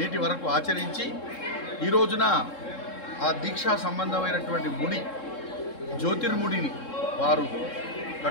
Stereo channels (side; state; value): right; late; 3.7 ms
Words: వరకు ఆచరించి ఈ రోజున ఆ దీక్షా సంబంధమైనటువంటి ముడి, జ్యోతిర్ముడిని వారు